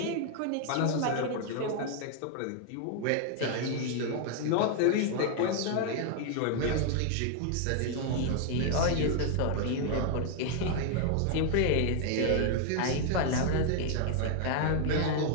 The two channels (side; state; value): both; different; correlation 0.00